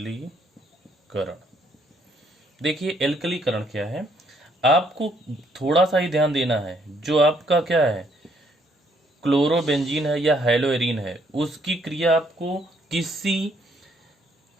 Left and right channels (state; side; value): normal; both; correlation 0.68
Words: देखिए एल्कलीकरण क्या है, आपको थोड़ा सा ही ध्यान देना है। जो आपका क्या है? क्लोरोबेंजीन है या हेलोएरिन है, उसकी क्रिया आपको किसी